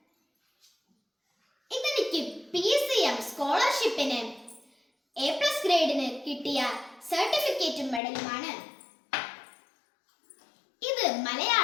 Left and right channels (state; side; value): drops out; right; at 8.0 s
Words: ഇതെനിക്ക് PCM സ്കോളർഷിപ്പിന് A+ ഗ്രേഡിന് കിട്ടിയ സർട്ടിഫിക്കറ്റും മെഡലുമാണ്. ഇത്